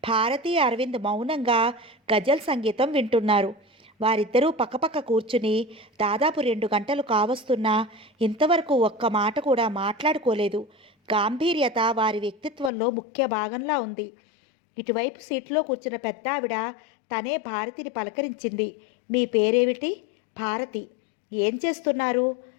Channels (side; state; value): right; drops out; at 12.7 s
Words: భారతి, అరవింద్ మౌనంగా గజల్ సంగీతం వింటున్నారు. వారిద్దరూ పక్కపక్క కూర్చుని దాదాపు 2 గంటలు కావస్తున్నా ఇంతవరకు ఒక్క మాట కూడా మాట్లాడుకోలేదు. గాంభీర్యత వారి వ్యక్తిత్వంలో ముఖ్య భాగంలా ఉంది. ఇటువైపు సీట్లో కూర్చున్న పెద్ద ఆవిడ తనే భారతిని పలకరించింది. మీ పేరేమిటి? భారతి. ఏం చేస్తున్నారు?